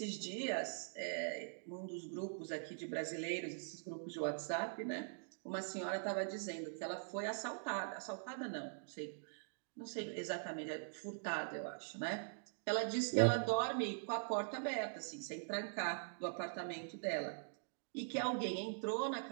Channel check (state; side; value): silent; left; digital silence